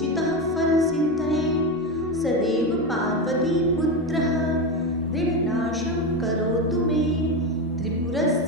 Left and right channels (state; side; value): normal; both; correlation 0.15